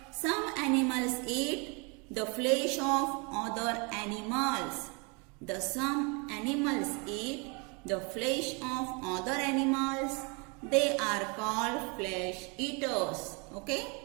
some animals eat the flesh of other animals. Some animals eat the flesh of other animals. They are called flesh eaters. Okay?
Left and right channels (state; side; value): quieter; left; 32.1 dB